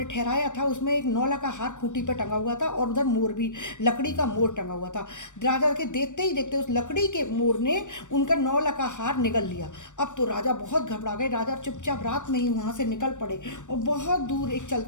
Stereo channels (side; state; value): right; late; 0.85 ms